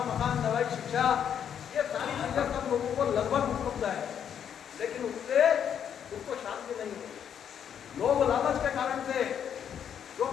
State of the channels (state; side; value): quieter; right; 8.6 dB